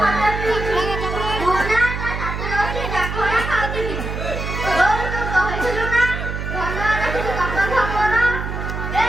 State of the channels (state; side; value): noise; right; hum, 5 dB below the sound